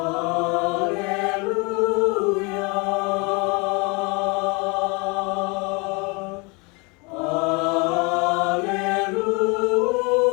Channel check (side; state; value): right; quieter; 29.7 dB